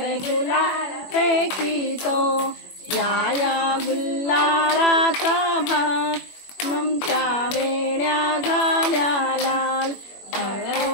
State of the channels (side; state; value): right; late; 21 ms